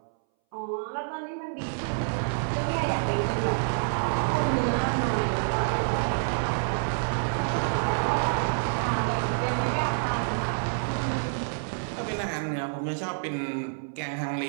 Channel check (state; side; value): silent; left; 59 dB below the other